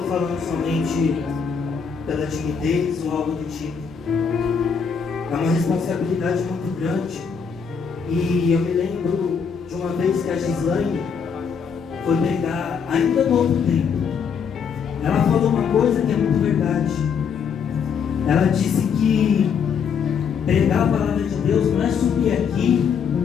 falando somente pela timidez ou algo do tipo. É uma responsabilidade muito grande. E eu me lembro de uma vez que a Gislaine foi pregar ainda no outro tempo. Ela falou uma coisa que é muito verdade. Ela disse que pregar a palavra de Deus não é subir aqui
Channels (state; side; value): quieter; right; 6.4 dB